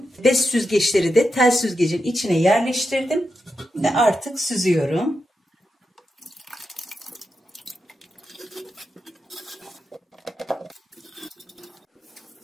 bez süzgeçleri de tel süzgecin içine yerleştirdim ve artık süzüyorum.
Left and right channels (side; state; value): both; normal; correlation 0.88